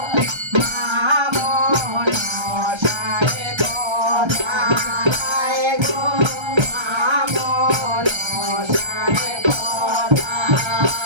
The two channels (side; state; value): left; late; 1.3 ms